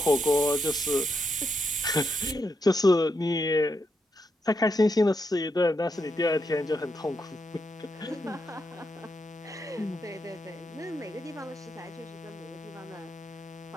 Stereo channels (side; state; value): both; normal; correlation 0.82